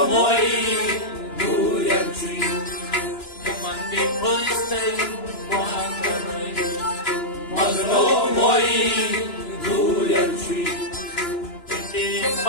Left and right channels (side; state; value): right; late; 2.9 ms